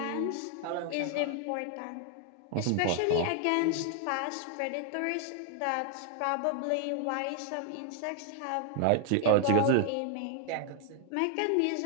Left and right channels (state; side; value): different; both; correlation 0.00